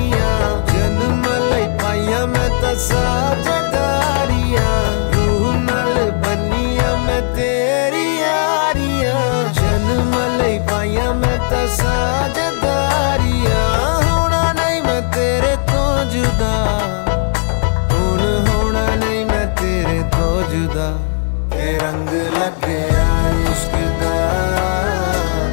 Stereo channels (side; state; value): right; silent; digital silence